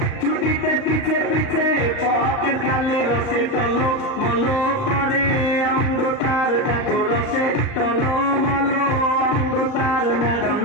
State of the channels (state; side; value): late; right; 38 ms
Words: ছুটিতে পিছে পিছে পকেট খালি রসে টলো মলো করে অঙ্গ তার দেখো রসে টলো মলো অঙ্গ তার ম্যাডাম